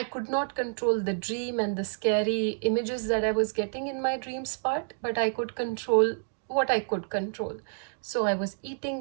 could not control the dream and the scary images that I was getting in my dreams part, but I could control what I could control. So I was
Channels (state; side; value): silent; left; digital silence